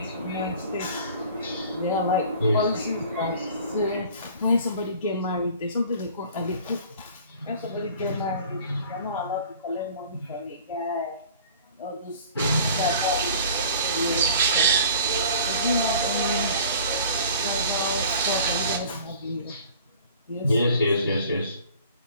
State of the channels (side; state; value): both; inverted; correlation -0.47